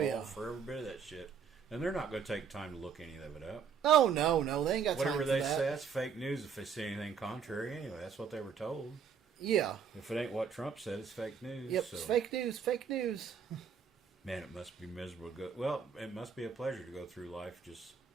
for every bit of that shit. And they're not going to take time to look any of it up. oh no, they ain't got Whatever time they for that. say, that's fake news if they see anything contrary anyway. That's what they were told. Yeah. If it ain't what Trump said, it's fake news. Yep. So, It's fake news. Fake news. man, it must be miserable to go. Well, it must be a pleasure to go through life just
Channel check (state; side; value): quieter; left; 6.6 dB